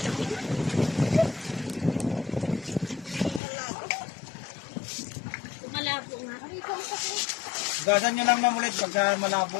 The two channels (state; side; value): drops out; right; at 3.4 s